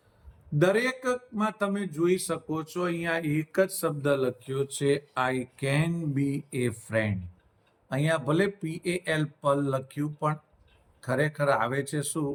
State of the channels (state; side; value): identical; both; correlation 1.00